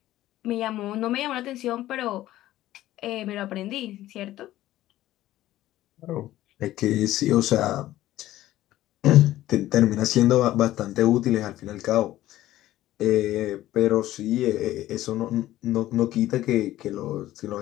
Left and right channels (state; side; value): quieter; right; 14.7 dB